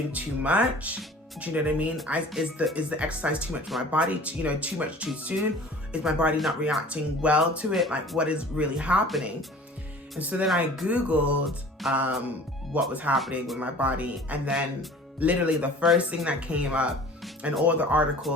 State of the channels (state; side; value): normal; both; correlation 0.45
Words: too much? Do you know what I mean? Is the exercise too much for my body? Too much too soon? Is my body not reacting well to it? Like, what is really happening? And so then I Googled what was happening with my body, and then literally the first thing that came up, and all the